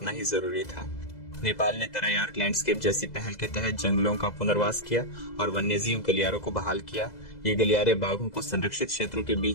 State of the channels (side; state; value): right; late; 2.0 ms